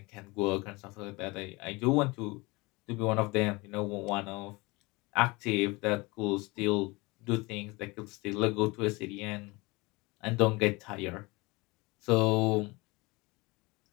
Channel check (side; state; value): right; quieter; 24.5 dB